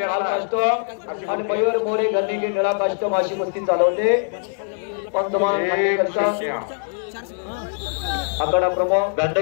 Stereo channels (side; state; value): right; silent; 63 dB below the other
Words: लाल कास्टो आणि मयूर मोरे गन्नीगे निळा कास्टो अशी कुस्ती चालवते। पंतमान आकडा प्रमुख